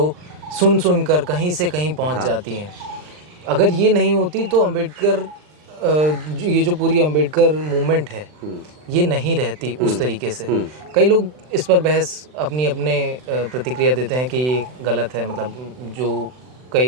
सुन कर कहीं से कहीं पहुँच जाती हैं, अगर ये नहीं होती तो अम्बेडकर ये जो पूरी अम्बेडकर मूवमेंट है ये नहीं रहती उस तरीके से। कई लोग इस पर बहस अपने प्रतिक्रिया देते हैं कि ये गलत है, मतलब जो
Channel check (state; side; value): late; left; 39 ms